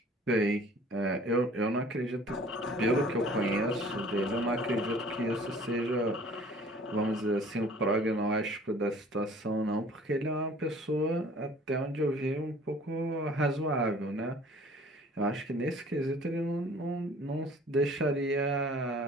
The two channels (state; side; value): normal; both; correlation 0.51